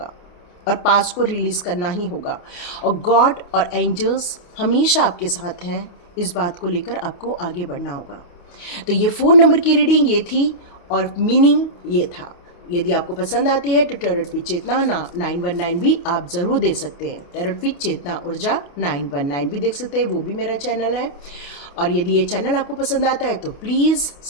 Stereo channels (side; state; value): right; late; 28 ms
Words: और पास को रिलीज़ करना ही होगा। और गॉड और एंजल्स हमेशा आपके साथ हैं, इस बात को लेकर आपको आगे बढ़ना होगा। तो ये 4 नंबर की रीडिंग ये थी और मीनिंग ये था। यदि आपको पसंद आती है तो टैरोट विद चेतना 919 भी आप ज़रूर दे सकते हैं। टैरोट विद चेतना ऊर्जा 919 भी देख सकते हैं, वो भी मेरा चैनल है। और यदि ये चैनल आपको पसंद आता है तो please